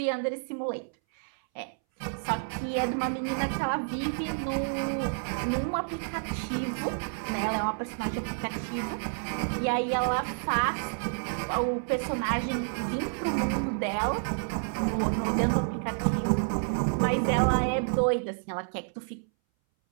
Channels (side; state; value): left; silent; 58 dB below the other